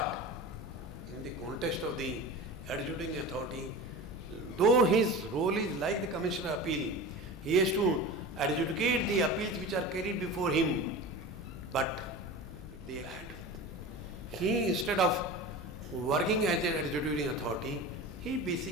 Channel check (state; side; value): normal; both; correlation 0.32